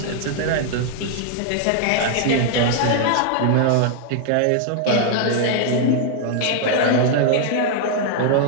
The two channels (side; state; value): both; different; correlation 0.00